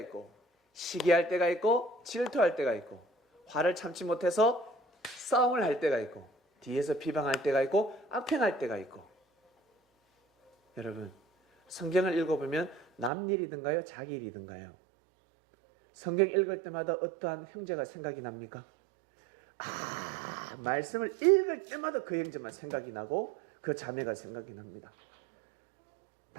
시기할 때가 있고, 질투할 때가 있고, 화를 참지 못해서 싸움을 할 때가 있고, 뒤에서 비방할 때가 있고, 악행할 때가 있고. 여러분, 성경을 읽어보면 남 일이든가요? 자기 일이든가요? 성경 읽을 때마다 어떠한 형제가 생각이 납니까? 말씀을 읽을 때마다 그 형제만 생각이 나고 그 자매가 생각이 납니다.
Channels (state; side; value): drops out; left; at 13.1 s